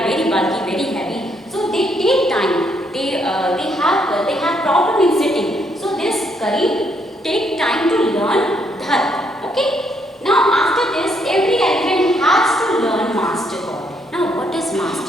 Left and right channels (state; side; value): normal; both; correlation 0.73